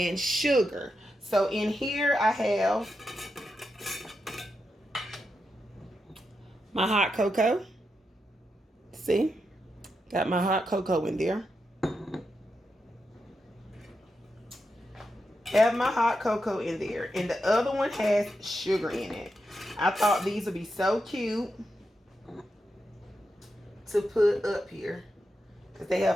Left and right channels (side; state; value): both; normal; correlation 0.86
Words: sugar. So in here I have my hot cocoa. See? Got my hot cocoa in there. Have my hot cocoa in there. And the other one has sugar in it. I thought these would be so cute to put up here because they